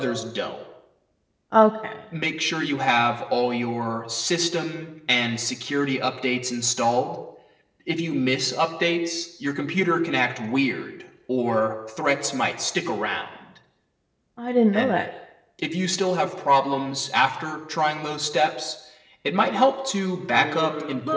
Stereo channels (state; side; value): identical; both; correlation 1.00